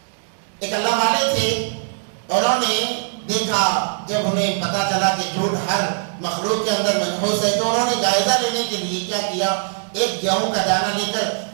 ایک اللہ والے تھے، انہوں نے دیکھا، جب انہیں پتا چلا کہ جھوٹ ہر مخلوق کے اندر منحوس ہے تو انہوں نے جائزہ لینے کے لیے کیا کیا، ایک گیہوں کا دانہ لے کر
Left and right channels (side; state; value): left; silent; digital silence